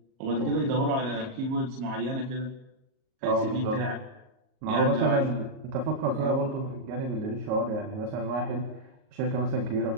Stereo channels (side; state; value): left; late; 38 ms